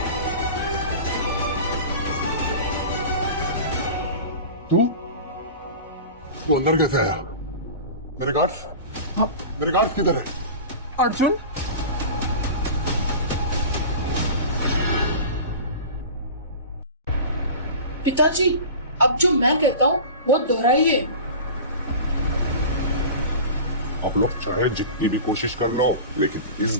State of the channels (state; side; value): inverted; both; correlation -0.34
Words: तू अंदर कैसे आया? मेरे गार्ड्स किधर है? अर्जुन, पिताजी, अब जो मैं कहता हूँ वो दोहराइए। आप लोग चाहे जितनी भी कोशिश कर लो, लेकिन इस